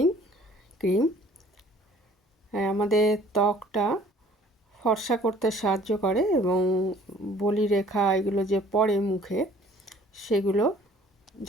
ক্রিম। আমাদের ত্বকটা ফর্সা করতে সাহায্য করে এবং বলিরেখা এগুলো যে পড়ে মুখে, সেগুলো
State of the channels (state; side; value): normal; both; correlation 0.54